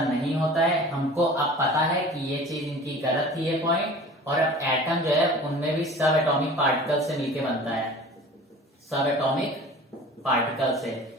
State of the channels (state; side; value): normal; both; correlation 0.42